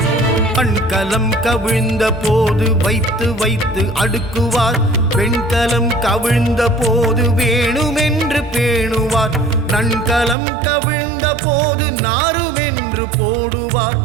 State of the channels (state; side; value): drops out; left; at 10.4 s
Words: நன்கலம் கவிழ்ந்த போது வைத்து வைத்து அடுக்குவார். வெண்கலம் கவிழ்ந்த போது வேணுமென்று பேணுவார். நன்கலம் கவிழ்ந்த போது நாருமென்று போடுவார்.